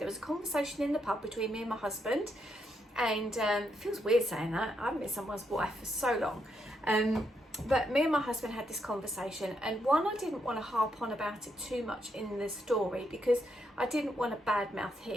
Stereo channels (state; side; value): normal; both; correlation 0.79